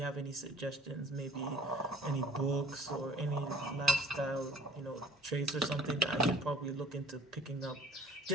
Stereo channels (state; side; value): normal; both; correlation 0.50